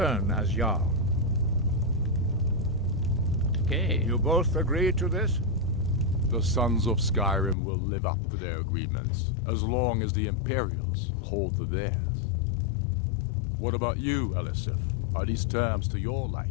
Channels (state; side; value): drops out; right; at 7.6 s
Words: as Jarl. Okay. You both agree to this? The Sons of Skyrim will live up to their agreements, as long as the Imperials hold to theirs. What about you, Elisif? Are these terms to your